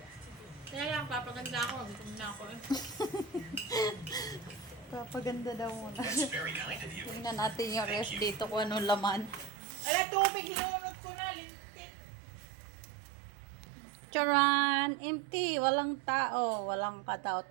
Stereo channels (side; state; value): left; drops out; at 9.5 s